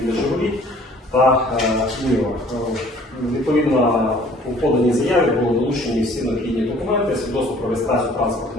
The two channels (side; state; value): both; normal; correlation 0.54